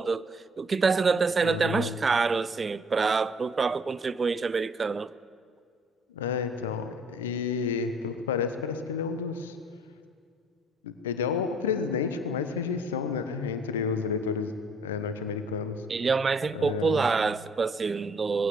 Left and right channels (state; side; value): normal; both; correlation 0.58